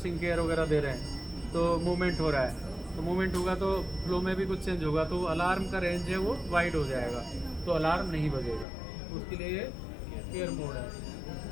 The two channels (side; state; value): right; drops out; at 8.7 s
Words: केयर वगैरह दे रहे हैं, तो मूवमेंट हो रहा है, तो मूवमेंट होगा तो फ्लो में भी कुछ चेंज होगा, तो अलार्म का रेंज है वो वाइड हो जाएगा, तो अलार्म नहीं बजेगा, उसके लिए ये केयर मोड है।